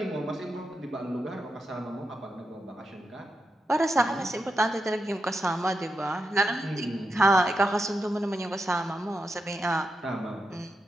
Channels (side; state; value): both; normal; correlation 0.86